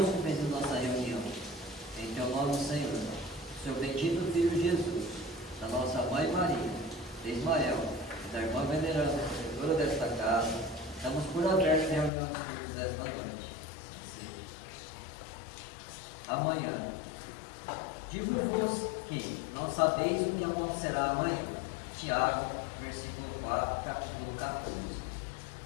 em nossa reunião. Em teu nome, Senhor, seu bendito Filho Jesus, da nossa Mãe Maria, de Ismael e da irmã veneranda, protetora desta casa, estamos por aberto em reunião dos cultos desta noite. Amanhã. Digo-vos que não sabeis o que acontecerá amanhã. Tiago, versículo 4, capítulo 14.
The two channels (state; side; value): drops out; right; at 12.1 s